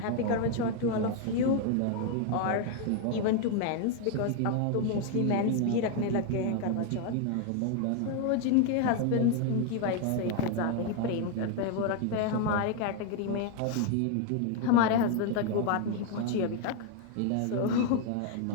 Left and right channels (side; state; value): both; different; correlation 0.01